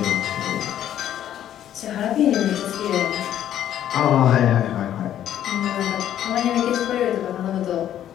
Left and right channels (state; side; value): quieter; right; 11.2 dB